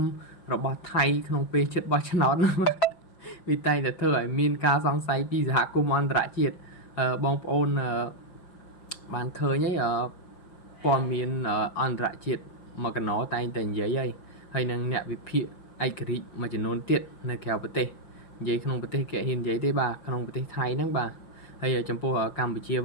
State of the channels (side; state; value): right; late; 5.6 ms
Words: របស់ថៃក្នុងពេលជិតបោះឆ្នោតវាតែងតែធ្វើឲ្យមានការសង្ស័យពីសហគមន៍អន្តរជាតិបងប្អូនបានឃើញហើយព័ត៌មានអន្តរជាតិមកកណោតែងតែនិយាយហើយនឹងអ្នកវិភាគឯករាជ្យមួយចំនួនទៀតនៅក្រៅប្រទេសនិយាយក្នុងប្រទេសគេហ៊ាននិយាយទេបាទក្នុងប្រទេសថៃហ្នឹងបាទហើយចំពោះកម្ពុជា